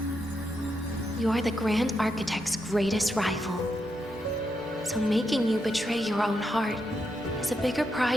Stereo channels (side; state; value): both; normal; correlation 0.83